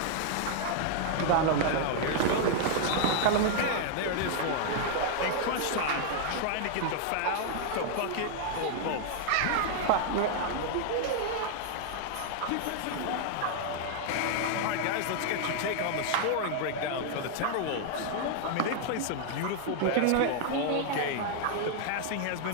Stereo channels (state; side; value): different; both; correlation 0.00